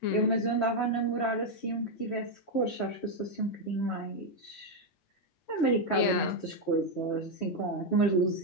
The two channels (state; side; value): late; right; 8.5 ms